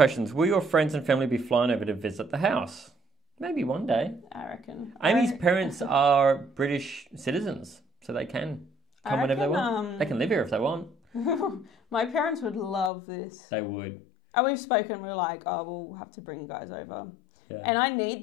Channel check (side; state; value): right; drops out; at 12.9 s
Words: Will your friends and family be flying over to visit the house? Maybe one day. I reckon. Amy's parents are British citizens, so they can come whenever they want. They can live here if they want. My parents would love this. They would. And we've spoken, we're like, we'll have to bring you guys over. Yeah. And I need